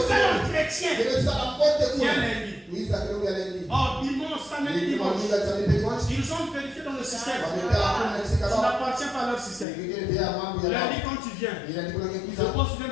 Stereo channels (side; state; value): right; drops out; at 9.7 s